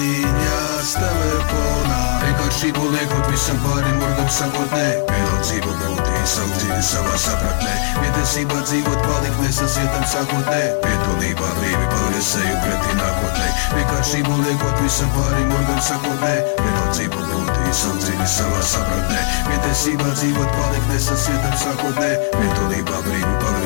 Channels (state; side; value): silent; right; digital silence